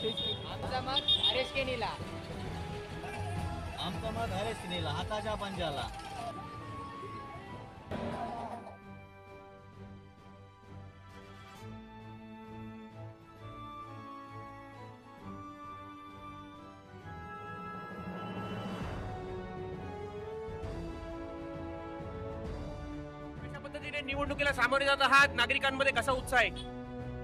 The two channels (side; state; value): both; identical; correlation 1.00